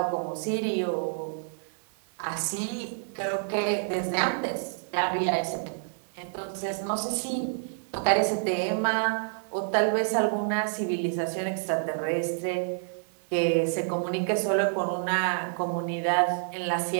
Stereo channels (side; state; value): left; silent; 55 dB below the other